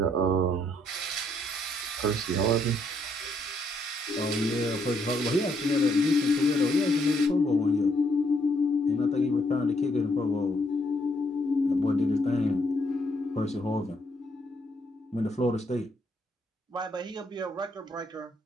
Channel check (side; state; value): both; normal; correlation 0.72